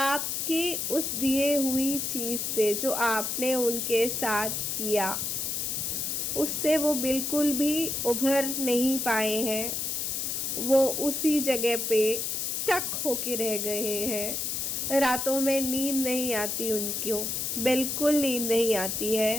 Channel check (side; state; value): left; noise; hiss, 1 dB below the sound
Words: उस दिए हुई चीज़ से जो आपने उनके साथ किया, उससे वो बिल्कुल भी उभर नहीं पाए हैं। वो उसी जगह पे स्टक होके रह गए हैं। रातों में नींद नहीं आती उनको, बिल्कुल नींद नहीं आती